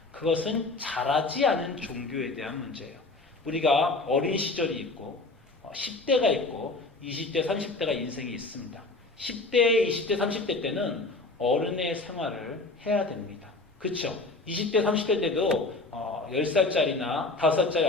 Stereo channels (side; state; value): right; quieter; 3.3 dB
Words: 그것은 자라지 않은 종교에 대한 문제예요. 우리가 어린 시절이 있고 10대가 있고 20대, 30대가 인생이 있습니다. 10대, 20대, 30대 때는 어른의 생활을 해야 됩니다. 그렇죠? 20대, 30대 때도 10살짜리나 5살짜리